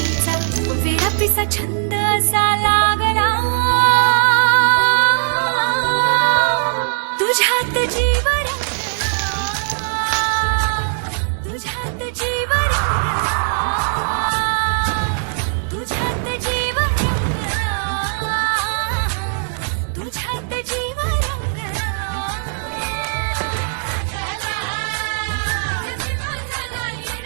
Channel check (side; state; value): left; silent; 65 dB below the other